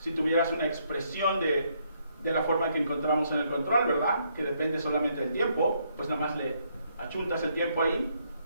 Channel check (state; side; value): inverted; both; correlation -0.72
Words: tuvieras una expresión de la forma que encontramos en el control, ¿verdad? Que depende solamente del tiempo, pues nada más le achuntas el tiempo ahí